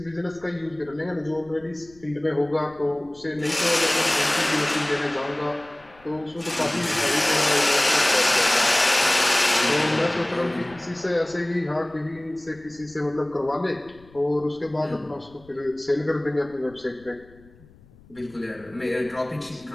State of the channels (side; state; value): left; noise; rumble, 26 dB below the sound